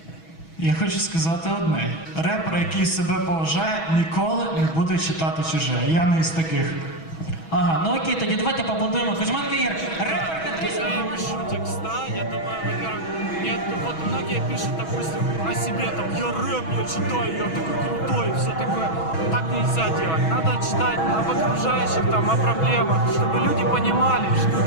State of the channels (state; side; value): late; right; 6.2 ms